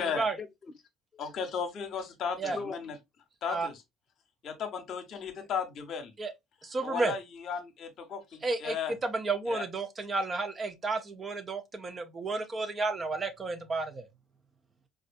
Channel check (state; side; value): normal; both; correlation 0.69